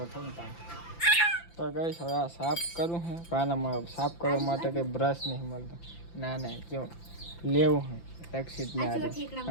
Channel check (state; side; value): late; right; 5.9 ms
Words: થયું ત્યાં. તો ગાઈસ હવે આ સાફ કરું છે. પાનામાં સાફ કરવા માટે કંઈ બ્રશ નહીં મળતો. ના જો લેવું છે. રક્ષિત ને આજે